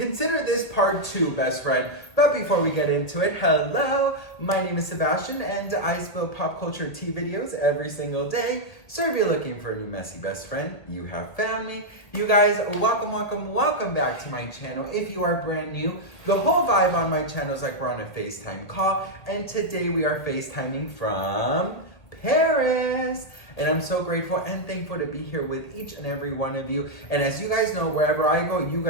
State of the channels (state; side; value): late; right; 2.0 ms